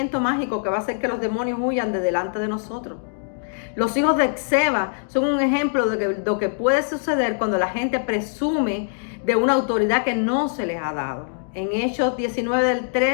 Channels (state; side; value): silent; right; digital silence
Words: mágico que va a hacer que los demonios huyan de delante de nosotros. Los hijos de Esceva son un ejemplo de lo que puede suceder cuando la gente presume de una autoridad que no se les ha dado. En Hechos 19 del